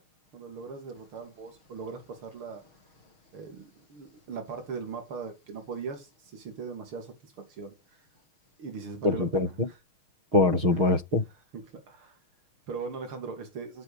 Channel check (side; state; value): left; late; 6.4 ms